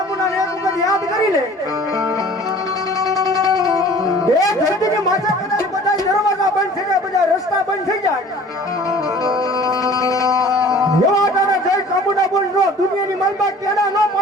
ને એક વખત યાદ કરી લે એ ધરતીની માથે કદાચ બધા દરવાજા બંધ થઈ જાય બધા રસ્તા બંધ થઈ જાય એવા તારા જય ચામુંડા બોલ નો દુનિયાની માલબા કેના નો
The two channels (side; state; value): both; normal; correlation 0.47